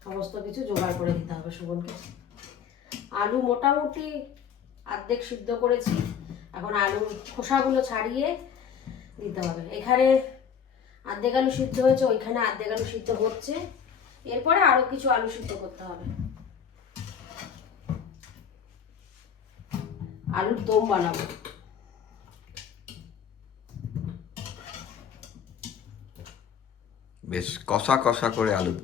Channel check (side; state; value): right; quieter; 7.5 dB